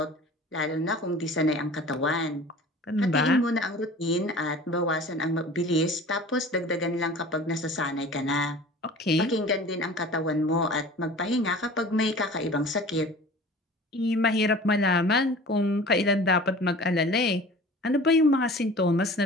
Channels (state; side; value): normal; both; correlation 0.42